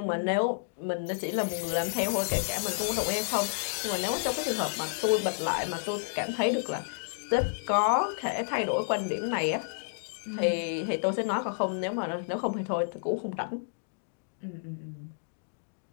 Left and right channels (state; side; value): silent; right; digital silence